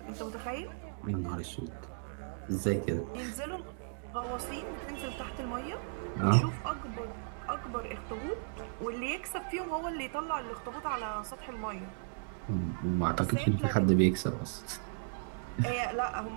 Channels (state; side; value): silent; left; digital silence